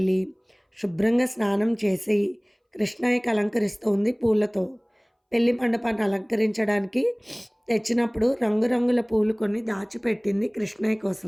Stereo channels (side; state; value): both; identical; correlation 1.00